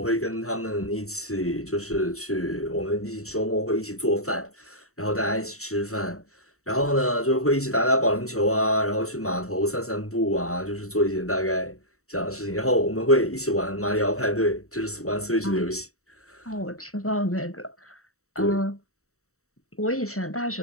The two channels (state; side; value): late; right; 0.64 ms